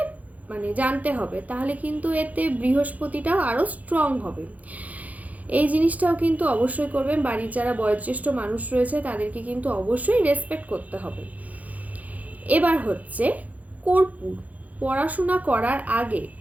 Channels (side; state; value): left; late; 0.076 ms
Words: মানে জানতে হবে, তাহলে কিন্তু এতে বৃহস্পতিটাও আরও স্ট্রং হবে। এই জিনিসটাও কিন্তু অবশ্যই করবেন। বাড়ির যারা বয়োজ্যেষ্ঠ মানুষ রয়েছে তাদেরকে কিন্তু অবশ্যই রেসপেক্ট করতে হবে। এবার হচ্ছে কর্পূর। পড়াশোনা করার আগে